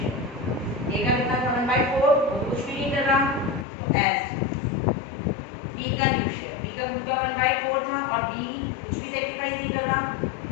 ए का कितना था? 1/4, वो कुछ भी नहीं कर रहा, तो एज। बी का न्यू शेयर, बी का खुद का 1/4 था और बी कुछ भी सेक्रीफाइस नहीं कर रहा,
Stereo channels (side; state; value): right; drops out; at 3.7 s